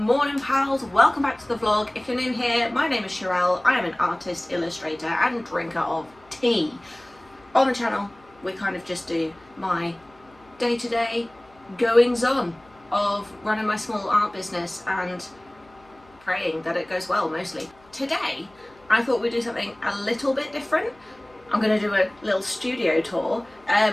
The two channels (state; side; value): noise; left; hum, 29 dB below the sound